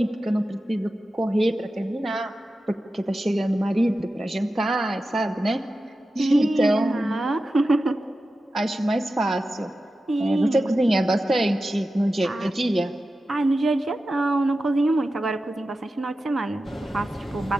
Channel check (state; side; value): normal; both; correlation 0.93